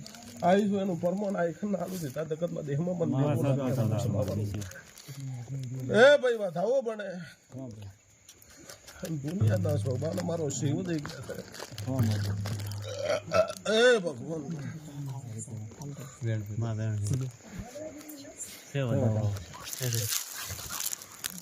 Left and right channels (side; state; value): both; identical; correlation 1.00